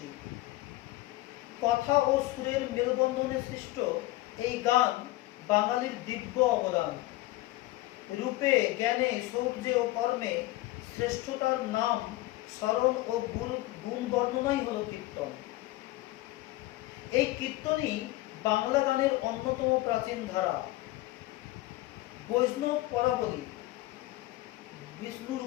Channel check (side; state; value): right; quieter; 18.1 dB